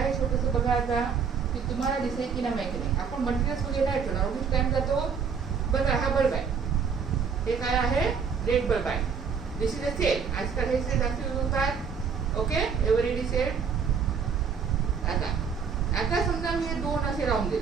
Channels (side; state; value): left; quieter; 6.2 dB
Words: छोटंसं, बघा आता की तुम्हाला दिसेल की नाही माहिती नाही. आपण मटेरियल्स वगैरे नाही ठेवणार, उगीच टाइम जातो. बघा हा बल्ब आहे, हे काय आहे, रेड बल्ब आहे. This is a cell. आजकाल हे सेल जास्त यूज होतात. Okay, everyday cell. आता आता समजा मी हे दोन असे लावून